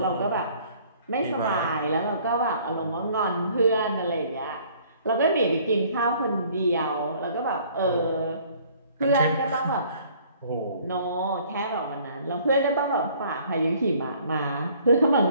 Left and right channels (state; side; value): inverted; both; correlation -0.57